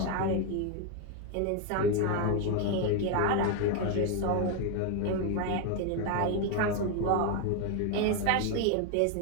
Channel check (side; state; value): both; different; correlation 0.01